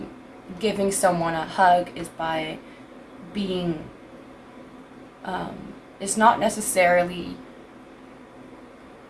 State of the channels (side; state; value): both; identical; correlation 1.00